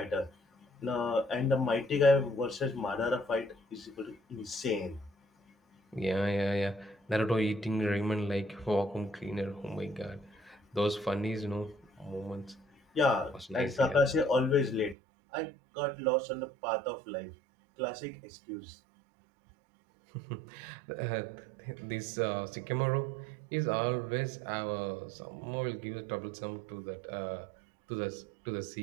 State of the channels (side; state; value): left; drops out; at 15.0 s